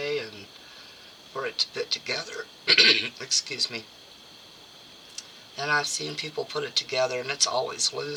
and for it to fit together. Excuse me. And I've seen people put it together and it's always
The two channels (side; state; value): both; identical; correlation 1.00